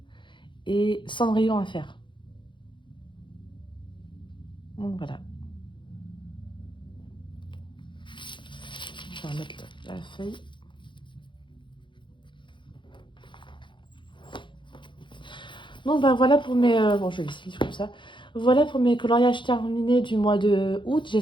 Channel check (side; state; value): right; late; 0.23 ms